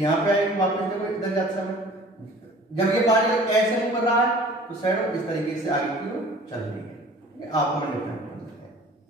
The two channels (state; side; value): normal; both; correlation 0.47